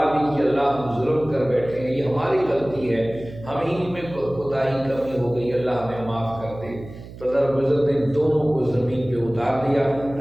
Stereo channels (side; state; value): right; noise; hum, 15 dB below the sound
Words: بھی کہ اللہ ہم ظلم کر بیٹھے ہیں، یہ ہماری غلطی ہے، ہم ہی میں کوتاہی کمی ہو گئی، اللہ ہمیں معاف کر دے۔ تو اللہ رب العزت نے دونوں کو زمین پہ اتار دیا